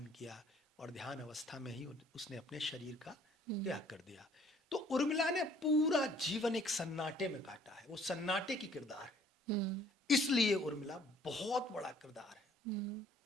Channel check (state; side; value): normal; both; correlation 0.58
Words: किया, और ध्यान अवस्था में ही उसने अपने शरीर का हुँ, त्याग कर दिया। तो उर्मिला ने पूरा जीवन एक सन्नाटे में काटा है, वो सन्नाटे की किरदार है। हुँ, इसलिए उर्मिला बहुत बड़ा किरदार है। हुँ,